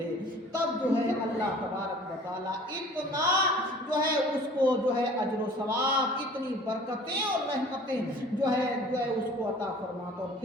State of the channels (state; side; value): normal; both; correlation 0.48